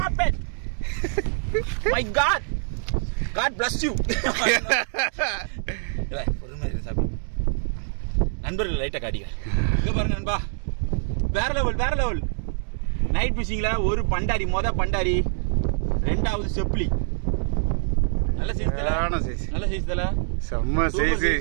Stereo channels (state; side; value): silent; left; digital silence